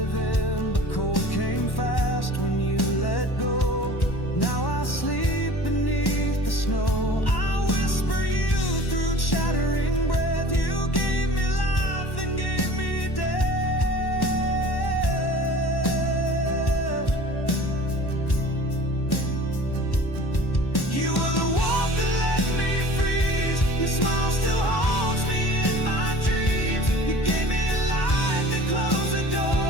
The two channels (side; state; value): right; late; 1.1 ms